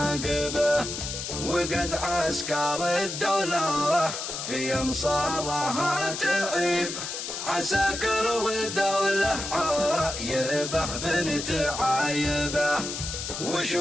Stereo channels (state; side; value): noise; left; hiss, 6 dB below the sound